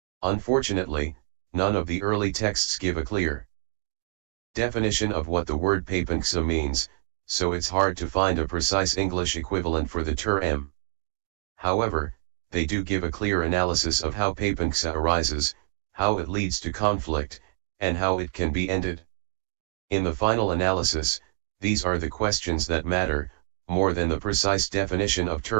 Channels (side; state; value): left; silent; digital silence